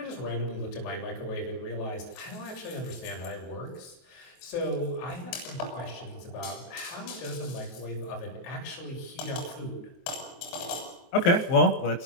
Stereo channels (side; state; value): right; late; 23 ms